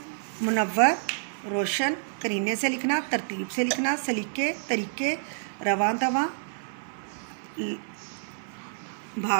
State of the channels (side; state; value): left; silent; 57 dB below the other